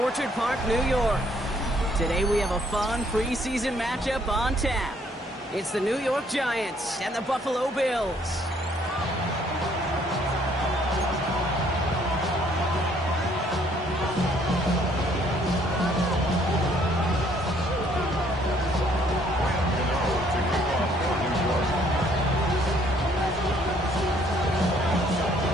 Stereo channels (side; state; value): both; normal; correlation 0.64